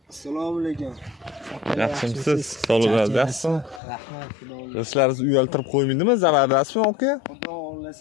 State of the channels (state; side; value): drops out; right; at 3.8 s